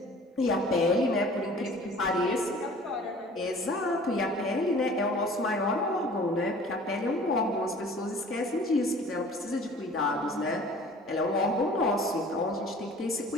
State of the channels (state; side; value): normal; both; correlation 0.47